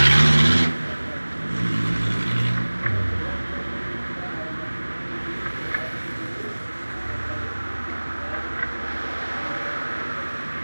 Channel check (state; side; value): inverted; both; correlation -1.00